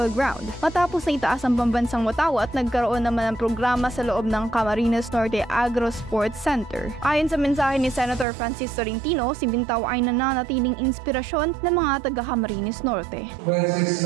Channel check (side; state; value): left; drops out; at 8.2 s